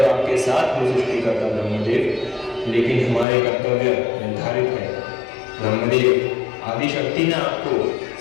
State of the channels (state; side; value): drops out; right; at 3.2 s